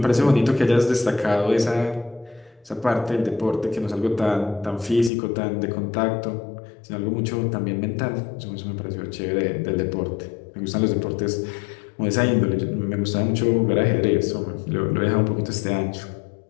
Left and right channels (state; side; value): drops out; right; at 5.1 s